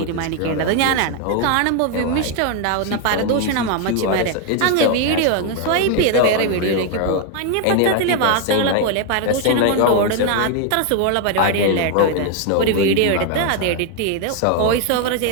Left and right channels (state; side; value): different; both; correlation 0.01